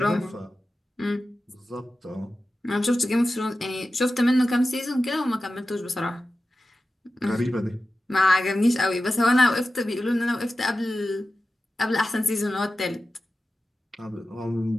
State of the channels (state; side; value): normal; both; correlation 0.94